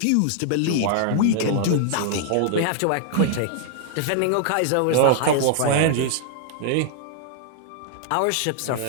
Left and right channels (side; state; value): both; different; correlation -0.01